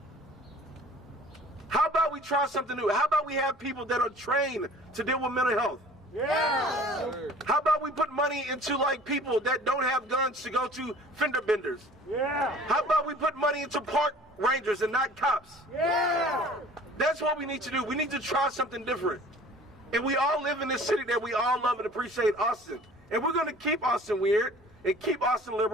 How about we try something new? How about we have people that are trained to deal with mental health? Yeah! How about we put money into like people that don't have guns to go to fender benders? Yeah! How about we put money into park rangers and not cops? Yeah! That's what we need to do. We need to try something different. And we all live in this city that we all love and appreciate, Austin. And we're going to keep Austin weird and keep Austin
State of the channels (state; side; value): normal; both; correlation 0.48